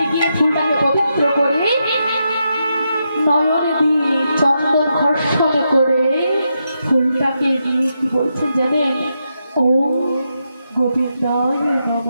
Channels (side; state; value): both; inverted; correlation -0.84